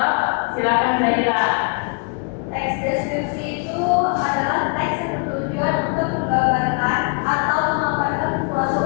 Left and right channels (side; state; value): right; quieter; 36.5 dB